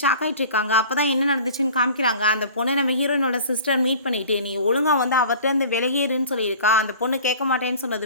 ஷாக் ஆகிட்டு இருக்காங்க. அப்போ தான் என்ன நடந்துச்சுன்னு காமிக்கிறாங்க. அந்த பொண்ணை நம்ம ஹீரோயினோட சிஸ்டர் மீட் பண்ணிட்டு நீ ஒழுங்காக வந்து அவர்கிட்ட இருந்து விலகிருன்னு சொல்லியிருக்கா. அந்த பொண்ணு கேட்க மாட்டேன்னு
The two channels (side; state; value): both; inverted; correlation -0.44